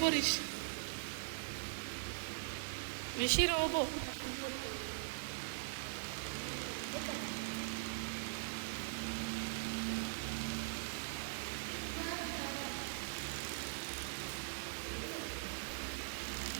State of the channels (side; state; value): left; silent; digital silence